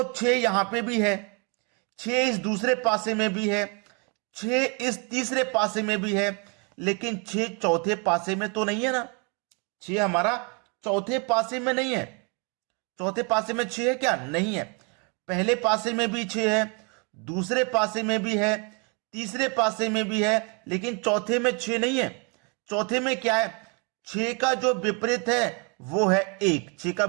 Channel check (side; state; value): left; quieter; 34.2 dB